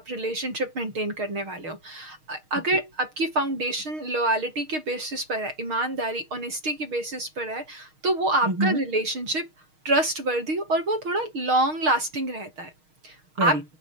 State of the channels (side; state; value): left; late; 6.4 ms